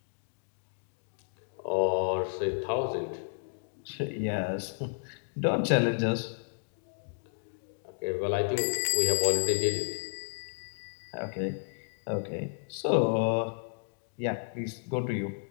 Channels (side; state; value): right; silent; digital silence